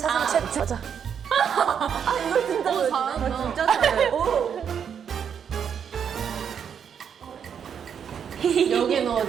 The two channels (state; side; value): quieter; left; 7.8 dB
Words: 최초. 맞아. 이거 진짜 잘한다. 진짜 잘해. 여긴